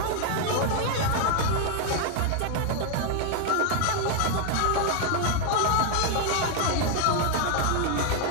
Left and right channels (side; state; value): both; different; correlation 0.00